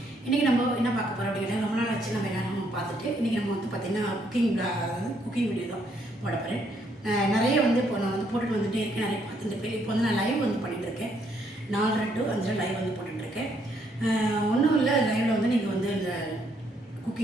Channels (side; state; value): both; normal; correlation 0.71